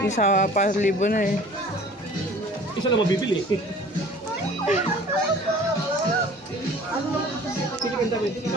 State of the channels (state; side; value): normal; both; correlation 0.47